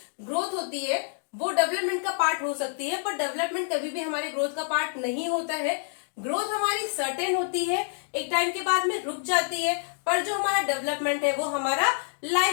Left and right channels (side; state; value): right; silent; digital silence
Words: ग्रोथ होती है वो डेवलपमेंट का पार्ट हो सकती है, पर डेवलपमेंट कभी भी हमारे ग्रोथ का पार्ट नहीं होता है। ग्रोथ हमारी सर्टेन होती है, एक टाइम के बाद में रुक जाती है, पर जो हमारा डेवलपमेंट है वो हमारा